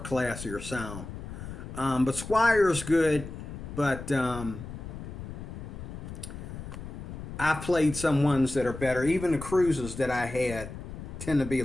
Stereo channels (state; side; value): noise; left; rumble, 10 dB below the sound